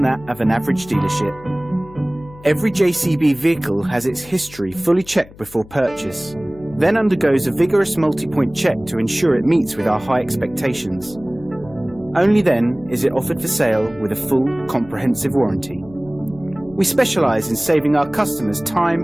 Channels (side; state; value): left; noise; hum, 21 dB below the sound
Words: that of an average dealership. Every JCB vehicle has its history fully checked before purchase, then undergoes a vigorous multi-point check to ensure it meets with our high expectations. Only then is it offered for sale with a full, comprehensive warranty. We specialise in saving our customers time